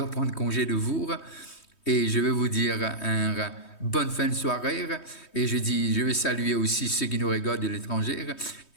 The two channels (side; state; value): right; late; 3.2 ms